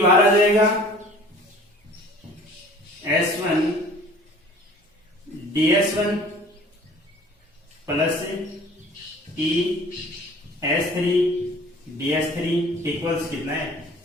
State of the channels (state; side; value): normal; both; correlation 0.48